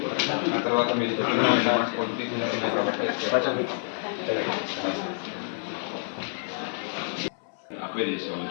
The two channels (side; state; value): right; silent; 60 dB below the other